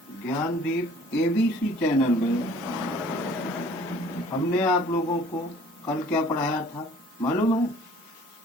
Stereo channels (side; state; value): both; normal; correlation 0.53